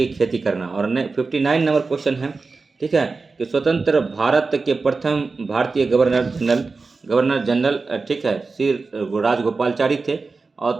खेती करना। और 59 नंबर क्वेश्चन है, ठीक है, कि स्वतंत्र भारत के प्रथम भारतीय गवर्नर जनरल ठीक है श्री राजगोपालचारी थे। और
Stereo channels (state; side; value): quieter; left; 4.1 dB